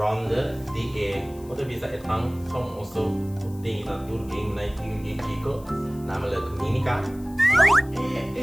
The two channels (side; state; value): left; noise; hiss, 24 dB below the sound